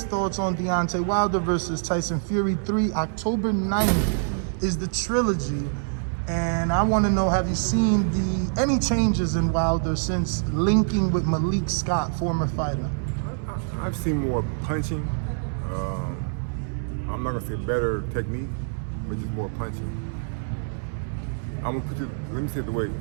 thoughts on Deontay Wilder versus Tyson Fury 3. October 9th is the trilogy. And I want to know, have you seen any changes in Wilder since linking with Malik Scott, former fighter? I've seen more punching. I'm not going to say better technique, but just more punching. I'm going to let me say it the way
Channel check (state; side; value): silent; left; 61 dB below the other